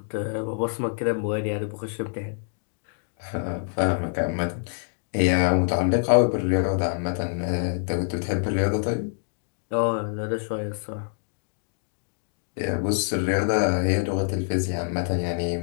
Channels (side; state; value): right; silent; 61 dB below the other